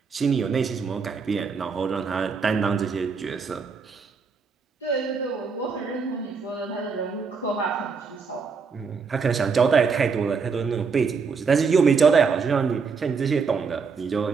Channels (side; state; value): left; quieter; 5.4 dB